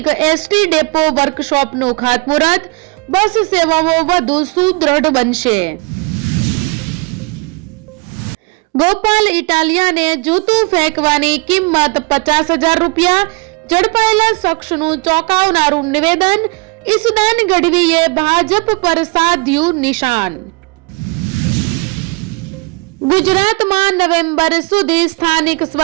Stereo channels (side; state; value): left; quieter; 27.7 dB